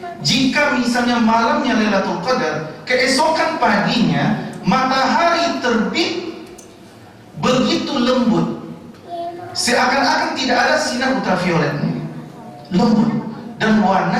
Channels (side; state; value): both; identical; correlation 1.00